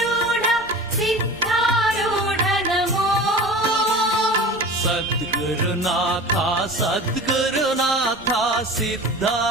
सिद्धारूढ नमो सद्गुरुनाथ सद्गुरुनाथ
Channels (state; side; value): noise; right; rumble, 22 dB below the sound